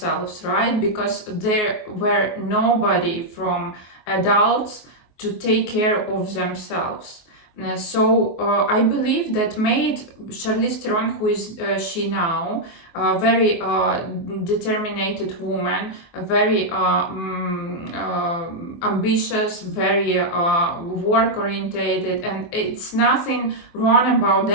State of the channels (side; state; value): right; late; 24 ms